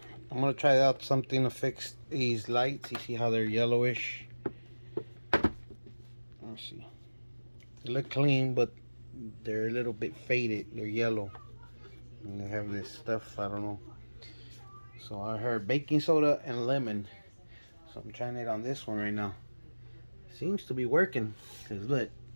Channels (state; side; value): inverted; both; correlation -1.00